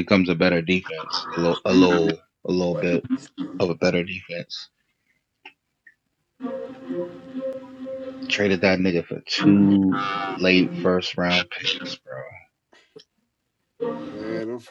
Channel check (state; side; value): identical; both; correlation 1.00